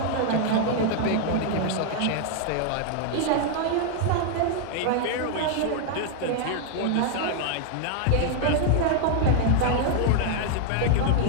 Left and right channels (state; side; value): different; both; correlation 0.00